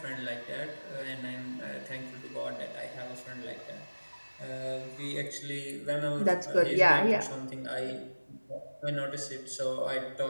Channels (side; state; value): both; inverted; correlation -1.00